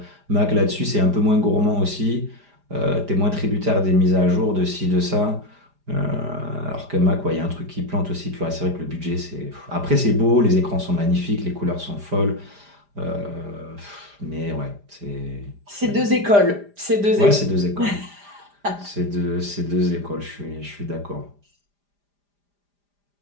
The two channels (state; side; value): late; left; 4.9 ms